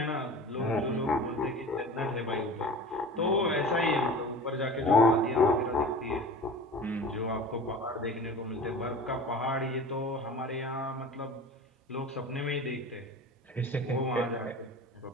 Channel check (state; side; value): normal; both; correlation 0.37